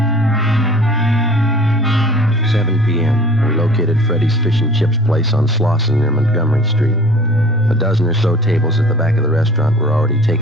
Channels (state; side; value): normal; both; correlation 0.46